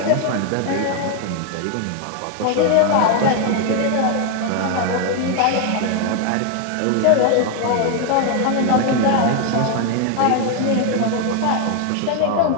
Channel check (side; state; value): both; different; correlation 0.01